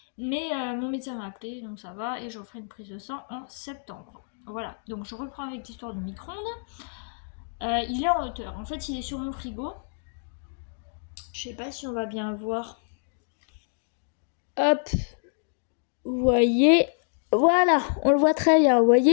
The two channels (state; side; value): silent; right; digital silence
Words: Mais mon médecin m'a appelé, donc ça va, et je referai une prise de sang en septembre. Voilà, donc je reprends avec l'histoire du micro-ondes. Il est en hauteur, en fait il est sur mon frigo. Je sais pas si on va bien voir. Hop, vous voyez, voilà, on le voit très bien. Vous